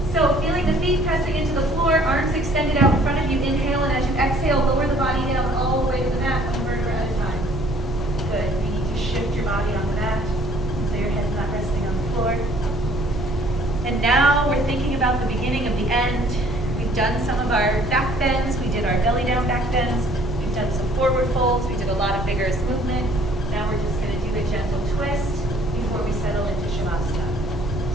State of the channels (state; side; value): normal; both; correlation 0.58